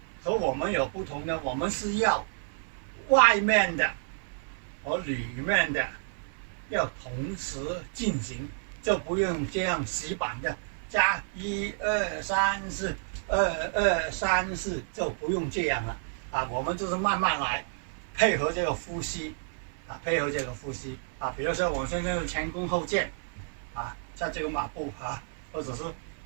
和我们有不同的，我们是要外面的和里面的要同时进行，就不用这样死板的加1、2、3、4， 2、2、3、4，就不用这样了啊。我们就是慢慢来，配合这个呼吸啊，比如说我现在是前弓后箭啊，在这个马步或者是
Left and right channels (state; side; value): silent; left; 58 dB below the other